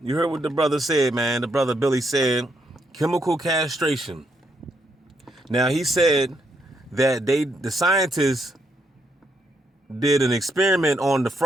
you heard what the brother said, man. The brother Billy said, chemical castration. Now he said that the scientists did an experiment on the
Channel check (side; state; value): both; normal; correlation 0.77